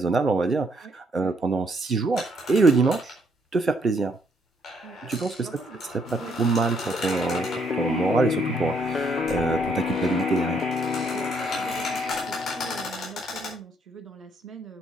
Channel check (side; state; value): both; normal; correlation 0.70